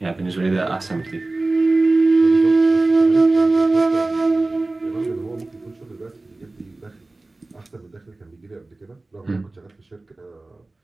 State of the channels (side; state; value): left; quieter; 3.1 dB